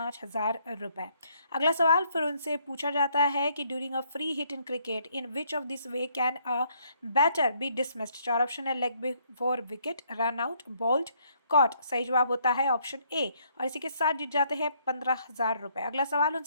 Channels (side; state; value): both; inverted; correlation -0.69